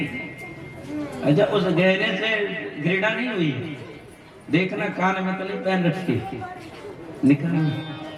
अच्छा, उस गहने से घृणा नहीं हुई? देखना कान में तो नहीं पहन रखी, निकाल।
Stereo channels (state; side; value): identical; both; correlation 1.00